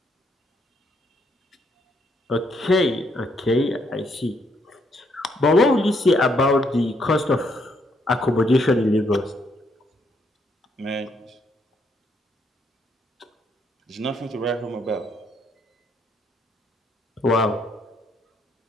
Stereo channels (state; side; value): normal; both; correlation 0.73